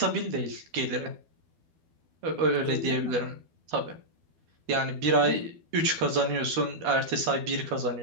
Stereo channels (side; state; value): left; late; 13 ms